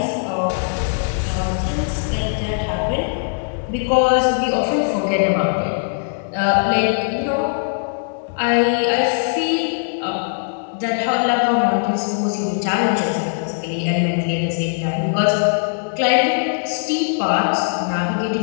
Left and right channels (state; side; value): silent; right; digital silence